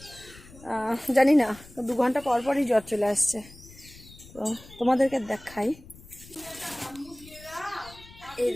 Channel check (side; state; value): left; noise; rumble, 21 dB below the sound